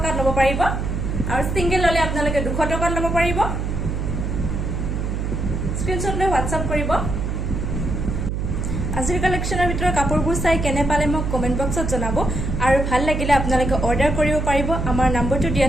ল'ব পাৰিব আৰু সিঙ্গেল ললে আপোনালোকে 200 টকাত ল'ব পাৰিব স্ক্ৰিনশ্বট লৈ হোৱাটছআপ কৰিব আজিৰ কালেকশ্যনৰ ভিতৰত কাপোৰবোৰ চাই কেনে পালে মোক কমেন্ট বক্সত জনাব আৰু ভাল লাগিলে আপোনালোকে অৰ্ডাৰ কৰিব পাৰিব আমাৰ নম্বৰটো দিয়া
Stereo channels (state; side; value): noise; right; hum, 2 dB below the sound